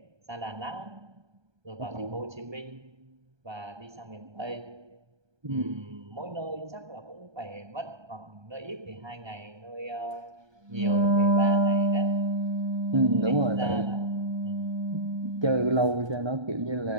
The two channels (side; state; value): left; late; 1.3 ms